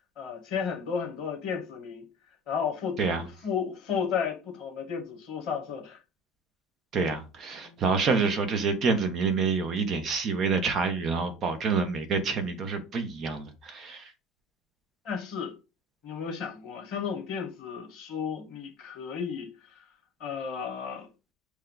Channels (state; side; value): normal; both; correlation 0.39